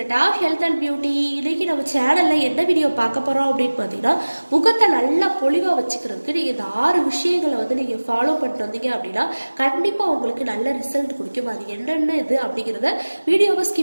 of Health and Beauty. இன்னைக்கு நம்ம சேனல்ல என்ன வீடியோ பார்க்க போறோம் அப்படின்னு பார்த்தீங்கன்னா, முகத்தை நல்லா பொலிவா வச்சுக்கிறதுக்கு நீங்க இந்த 6 விஷயங்களை வந்து நீங்க ஃபாலோ பண்ணிட்டு வந்தீங்க அப்படின்னா கண்டிப்பா உங்களுக்கு நல்ல ரிசல்ட் கொடுக்கும். அது என்னென்ன இது அப்படிங்கிறத வீடியோவை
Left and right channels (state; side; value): inverted; both; correlation -1.00